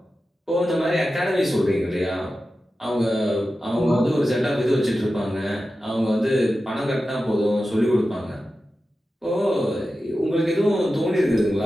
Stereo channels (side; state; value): both; normal; correlation 0.93